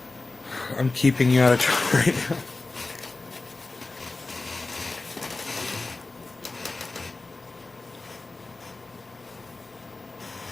I'm keeping you out of trouble right now.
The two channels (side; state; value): right; quieter; 3.3 dB